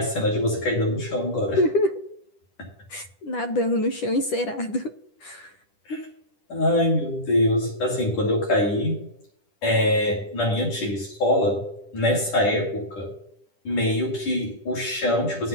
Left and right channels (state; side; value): late; right; 10 ms